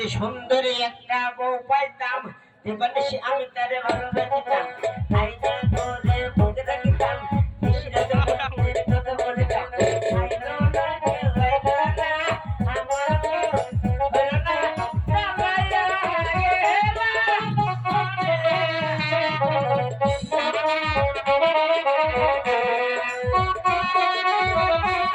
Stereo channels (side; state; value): both; identical; correlation 1.00